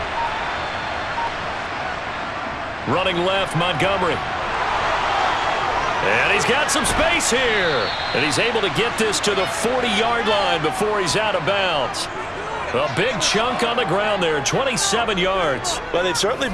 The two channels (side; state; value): both; identical; correlation 1.00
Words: Running left, Montgomery. And he's got some space here. And he's able to get this to the 40-yard line before he's out of bounds. A big chunk on the ground there, 27 yards. Well, they've certainly